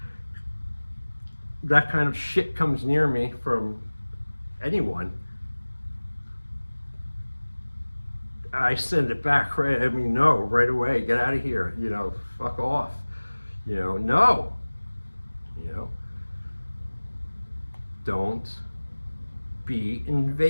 that kind of shit comes near me from anyone, I send it back right. I mean, no, right away. Get out of here. You know, fuck off. You know, no. You know, don't be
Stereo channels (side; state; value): both; inverted; correlation -1.00